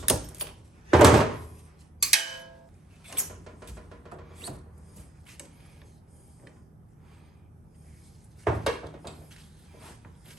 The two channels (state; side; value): normal; both; correlation 0.68